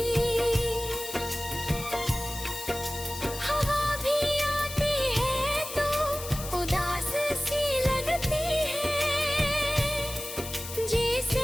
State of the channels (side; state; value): left; noise; hiss, 10 dB below the sound